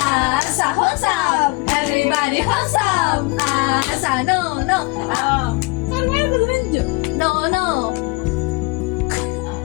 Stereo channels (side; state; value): right; quieter; 25.7 dB